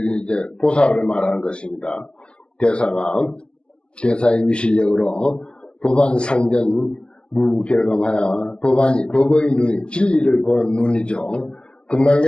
이제 보살을 말하는 것입니다. 대사의 위실력으로 법안 상전 무결감하여 법의 눈이 진리를 보는 눈이죠.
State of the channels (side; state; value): right; late; 0.050 ms